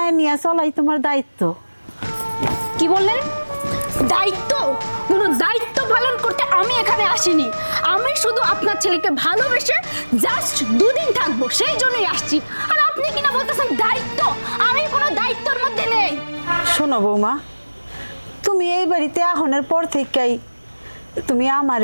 নিয়ে চলাই তোমার দায়িত্ব। কি বললেন? দায়িত্ব? কোনো দায়িত্ব পালন করতে আমি এখানে আসিনি। আমি শুধু আপনার ছেলেকে ভালোবেসে জাস্ট 2 দিন থাকবো, সেই জন্যই আসছি। আর আপনি কিনা বলতেছেন দায়িত্ব? আমি কোনো দায়িত্বের মধ্যে নেই। শোনো বৌমা, তুমি এই বাড়িতে আহনের পর থেকেই তুমি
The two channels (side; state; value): both; inverted; correlation -1.00